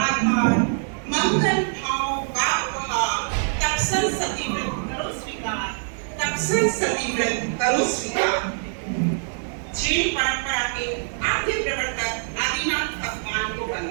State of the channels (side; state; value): left; silent; 63 dB below the other